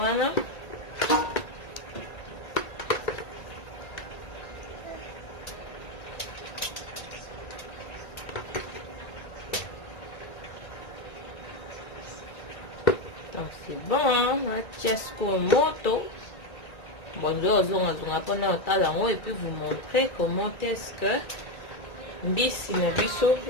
donc c'est bon, hein? Tiasco moto. Bon, je vais pendant le temps et puis vous montrer comment est-ce que mbisi na biso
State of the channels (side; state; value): right; late; 1.9 ms